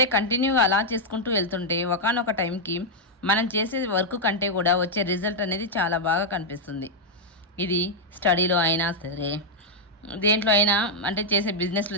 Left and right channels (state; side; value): normal; both; correlation -0.03